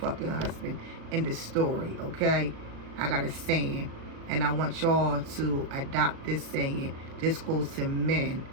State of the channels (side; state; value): left; late; 37 ms